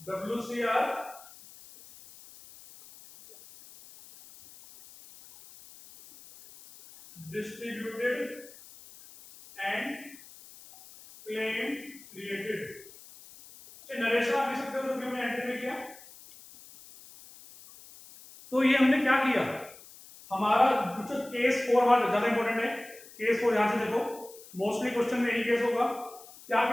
WCR distributed and claim created। Narration आप लिख सकते हो जो हमने एंट्री में किया। तो ये हमने क्या किया? हमारा जो केस 4 हमारा ज्यादा इंपॉर्टेंट है। केस 4 यहां से देखो, मोस्टली क्वेश्चन में यही केस होगा। क्या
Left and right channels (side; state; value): left; noise; hiss, 20 dB below the sound